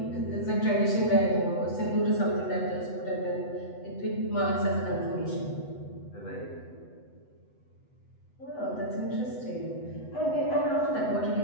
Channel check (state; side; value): late; right; 8.0 ms